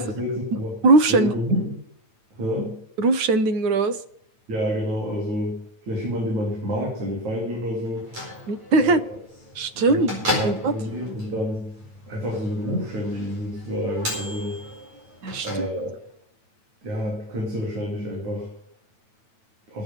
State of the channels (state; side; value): late; left; 9.1 ms